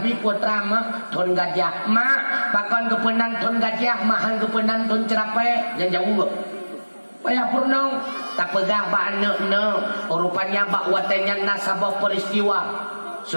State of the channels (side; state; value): both; inverted; correlation -1.00